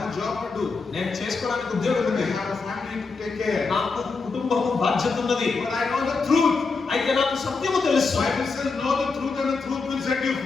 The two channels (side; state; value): right; quieter; 4.4 dB